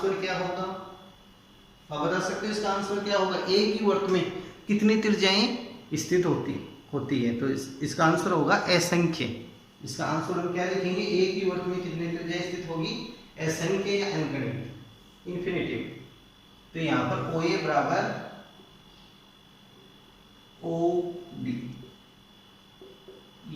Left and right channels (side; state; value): both; identical; correlation 1.00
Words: क्या होगा? आप बता सकते हो इसका आंसर क्या होगा? एक ही वृत्त में कितनी त्रिज्याएं स्थित होती है? तो इसका आंसर होगा असंख्य। इसका आंसर हम क्या लिखेंगे? एक ही वृत्त में कितनी त्रिज्याएं स्थित होगी? असंख्य या अनगिनत, इंफिनिटिव। तो यहाँ पर OA बराबर OD,